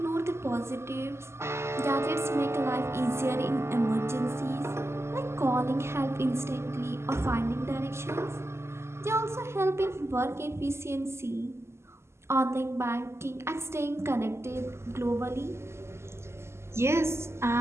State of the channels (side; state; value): left; late; 0.13 ms